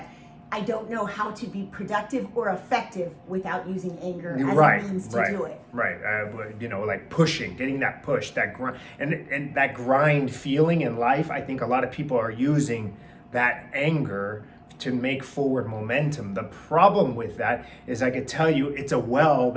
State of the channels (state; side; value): identical; both; correlation 1.00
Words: I don't know how to be productive or effective without using anger as a means to do it. Right. Like pushing, getting that push, that grind, and that grind feeling in life. I think a lot of people are using that anger to make forward momentum. The problem with that is I could tell you it's a well